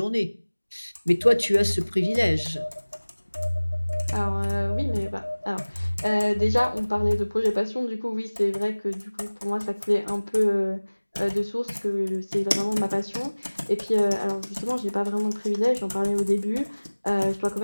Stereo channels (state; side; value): inverted; both; correlation -1.00